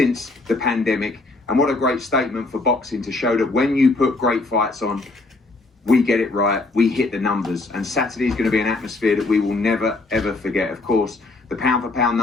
the pandemic. And what a great statement for boxing to show that when you put great fights on, we get it right, we hit the numbers. And Saturday is going to be an atmosphere that we will never, ever forget. Of course, the pound-for-pound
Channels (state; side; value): quieter; right; 3.3 dB